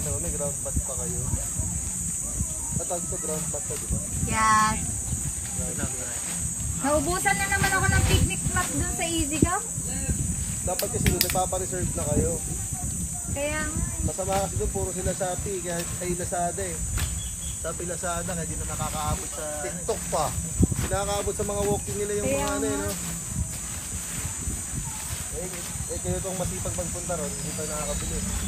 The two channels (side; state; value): both; identical; correlation 1.00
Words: naman, may ground bat pa kayo. Tatag to ground bat to, di ba? Yes. Naubusan na naman ako ng picnic mat dun sa Easy Go. Dapat kasi doon, nagpapareserve na kayo. Kaya Masama kasi doon, puro sila Shopee, kaya ay Lazada eh. Shopee Lazada, hindi na nakakaabot sa... TikTok pa. Nakakaabot sa mga walking nila yung Kaya mga ano eh, nga. no? Kayo itong masipag magpunta ron, hindi pa nakakabili.